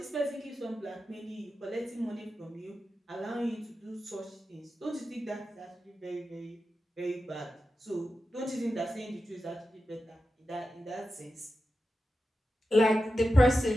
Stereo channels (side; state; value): both; normal; correlation 0.91